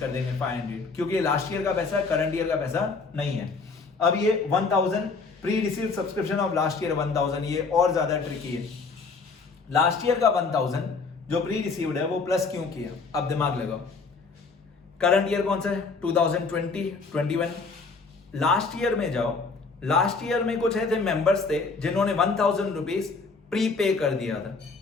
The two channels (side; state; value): right; quieter; 4.4 dB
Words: देंगे 500, क्योंकि लास्ट ईयर का पैसा है, करंट ईयर का पैसा नहीं है। अब ये 1000 pre receive subscription of last year 1000, ये और ज्यादा ट्रिकी है। लास्ट ईयर का 1000 जो प्री रिसीव्ड है वो प्लस क्यों किया, अब दिमाग लगाओ। करंट ईयर कौन सा है, 2020, 21। लास्ट ईयर में जाओ, लास्ट ईयर में कुछ ऐसे मेंबर्स थे जिन्होंने 1000 रुपीज प्री पे कर दिया था,